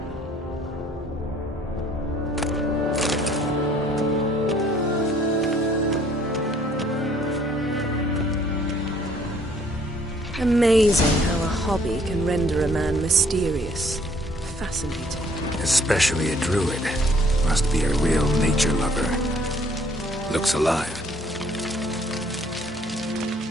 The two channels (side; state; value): both; normal; correlation 0.61